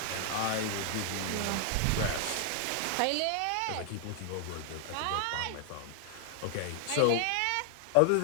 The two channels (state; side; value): different; both; correlation 0.00